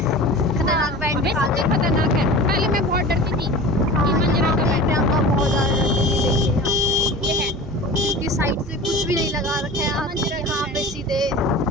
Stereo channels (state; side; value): normal; both; correlation 0.36